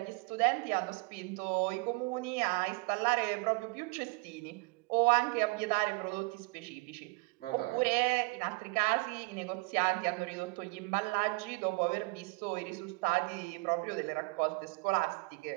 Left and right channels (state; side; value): quieter; left; 27.5 dB